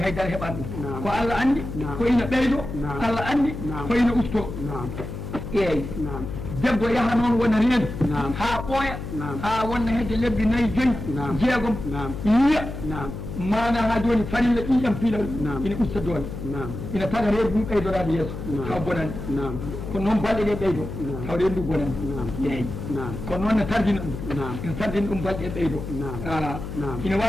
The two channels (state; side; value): noise; left; hum, 8 dB below the sound